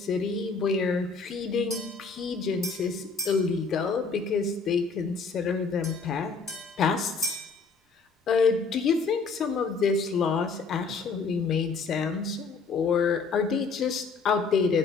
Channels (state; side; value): quieter; right; 4.7 dB